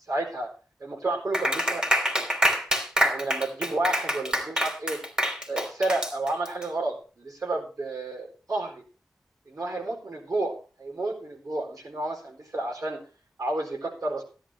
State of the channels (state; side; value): normal; both; correlation 0.75